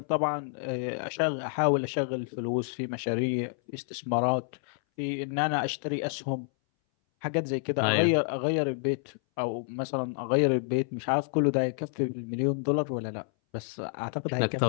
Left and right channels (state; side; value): silent; right; 58 dB below the other